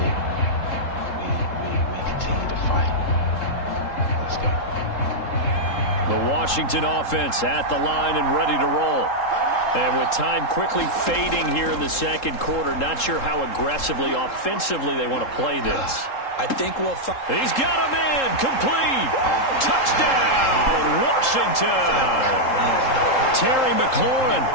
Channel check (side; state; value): right; late; 3.7 ms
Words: We continue to fight. Let's go. The Washington offense at the line and ready to roll. And with time quickly fading here in the second quarter, not sure how aggressively, offensively they want to play this. I think we'll He's got a man complete. Touchdown, Washington. Terry McLaurin